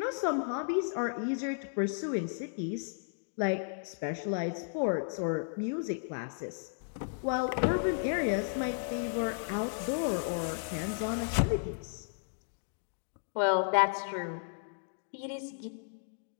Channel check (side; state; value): right; silent; digital silence